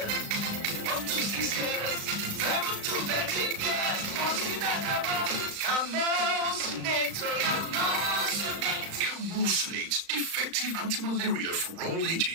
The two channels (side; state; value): left; late; 35 ms